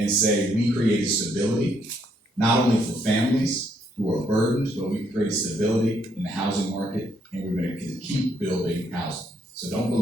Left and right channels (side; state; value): both; normal; correlation 0.72